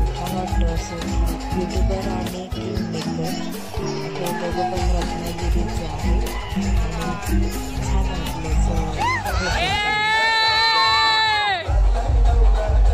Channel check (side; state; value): both; identical; correlation 1.00